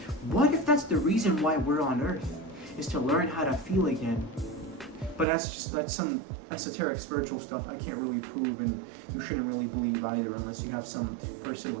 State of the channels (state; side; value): drops out; left; at 5.2 s